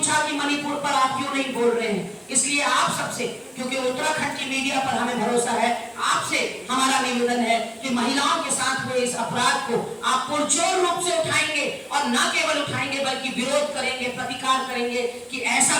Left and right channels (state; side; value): identical; both; correlation 1.00